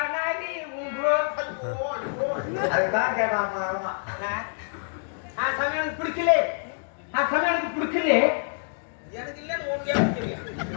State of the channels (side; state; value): right; silent; digital silence